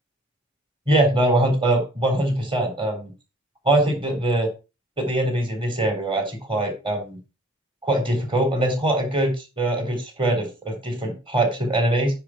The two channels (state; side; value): normal; both; correlation 0.54